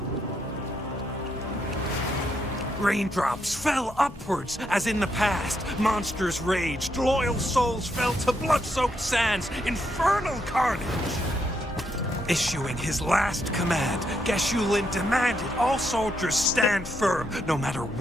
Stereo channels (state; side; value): normal; both; correlation 0.78